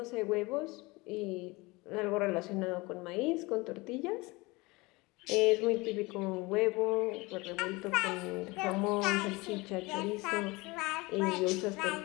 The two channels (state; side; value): quieter; right; 23.7 dB